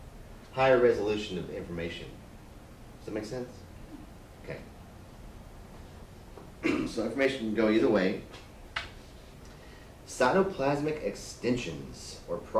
higher resolution of information. Does that make sense? Okay. So information can go either way. Cytoplasmic extensions or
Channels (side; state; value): both; identical; correlation 1.00